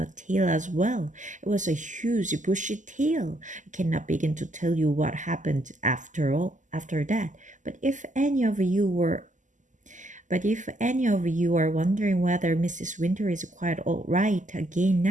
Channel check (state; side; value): late; left; 0.37 ms